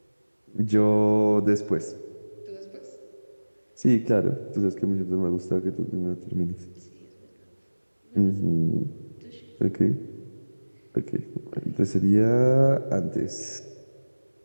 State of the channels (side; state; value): both; inverted; correlation -1.00